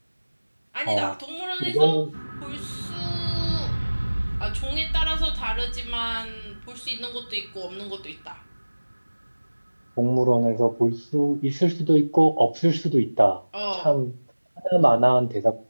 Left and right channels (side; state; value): both; inverted; correlation -1.00